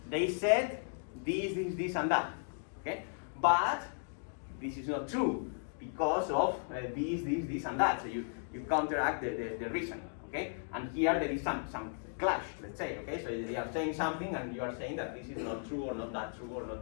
they said this, and that, okay, but this is not true because of this, and that. So you counteract the reason, okay, and here there is some clash, let's say, okay? So they are saying something and you are saying that this is not true or not that true or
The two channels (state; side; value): silent; right; digital silence